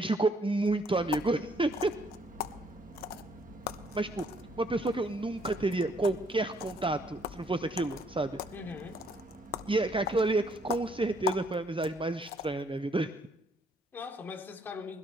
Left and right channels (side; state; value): both; normal; correlation 0.66